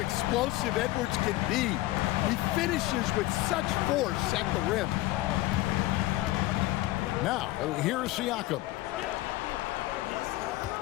Edwards can be. He finishes with such force at the rim. Now, here's Siakam.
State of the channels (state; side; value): quieter; right; 17.5 dB